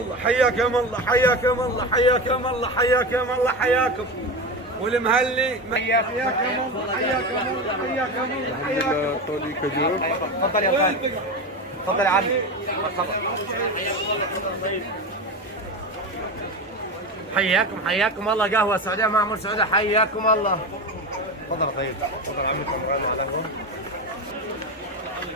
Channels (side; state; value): both; normal; correlation 0.21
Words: حياكم الله حياكم الله حياكم الله حياكم الله حياكم. والمهلي حياكم الله حياكم الله حياكم الله حياكم. सऊदी खजूर تفضل يا خالد، تفضل يا عمي، مرحبا. حياكم الله، قهوه سعوديه معمر سعوديه، حياكم الله. تفضل يا طيب، تفضل عمي كمران على القهوه.